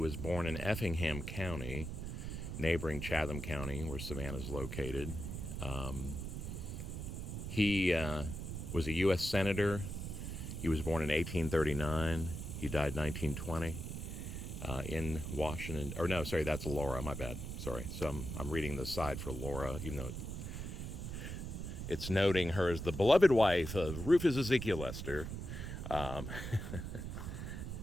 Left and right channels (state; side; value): noise; right; rumble, 6 dB below the sound